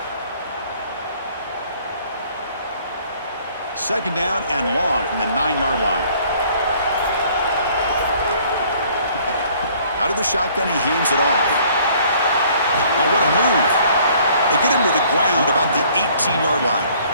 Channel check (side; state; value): both; inverted; correlation -0.58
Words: Second down and long from the 9-yard line. Out of the shotgun, he hands it off. Now what a move. They get him to the ground about the 18-yard line.